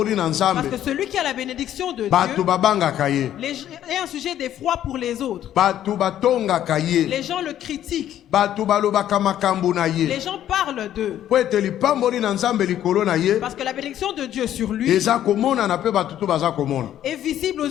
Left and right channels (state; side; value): quieter; right; 11.5 dB